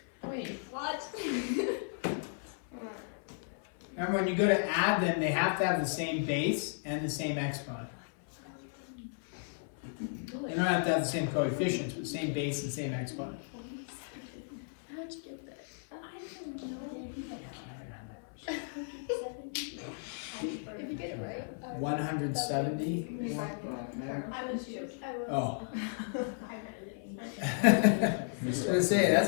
Wait, what? Remember, when you go to add them, they have to have the same base and the same exponent. They don't have to have the same coefficients, but the same base and same exponent. How'd you get there? I don't know. Did you get it right? 170. I was joking. Oh. I I was going to say,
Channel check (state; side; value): silent; right; 55 dB below the other